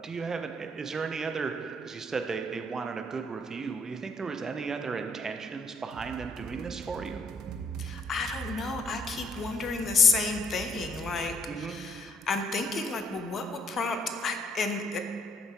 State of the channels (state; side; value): normal; both; correlation 0.66